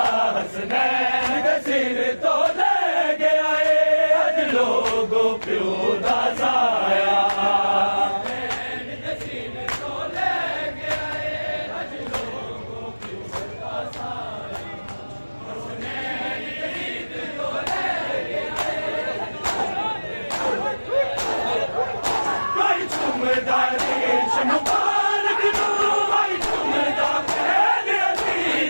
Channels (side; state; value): both; inverted; correlation -1.00